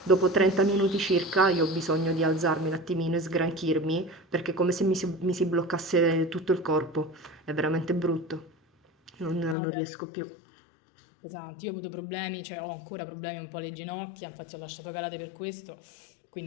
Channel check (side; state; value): right; drops out; at 9.6 s